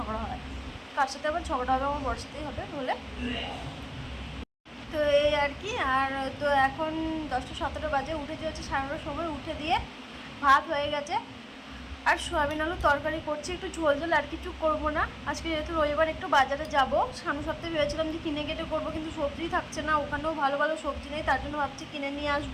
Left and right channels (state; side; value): identical; both; correlation 1.00